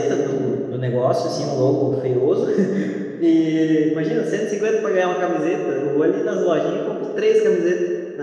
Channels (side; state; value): both; identical; correlation 1.00